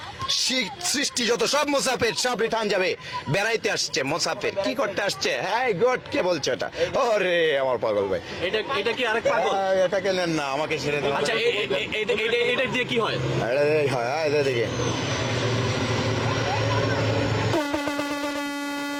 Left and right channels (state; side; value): identical; both; correlation 1.00